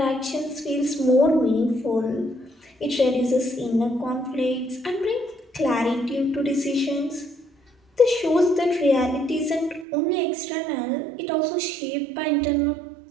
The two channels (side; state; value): left; drops out; at 9.9 s